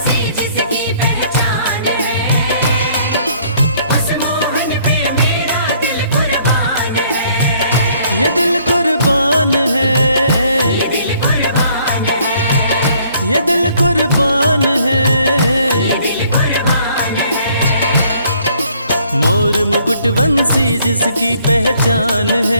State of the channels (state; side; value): inverted; both; correlation -0.62